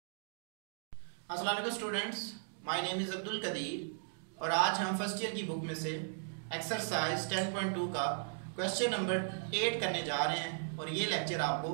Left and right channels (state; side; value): silent; left; digital silence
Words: अस्सलाम वालेकुम students, my name is Abdul Qadir और आज हम first year की book में से एक्सरसाइज 10.2 का क्वेश्चन नंबर 8 करने जा रहे हैं और ये लेक्चर आपको